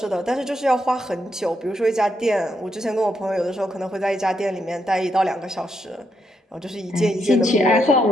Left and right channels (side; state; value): both; normal; correlation 0.80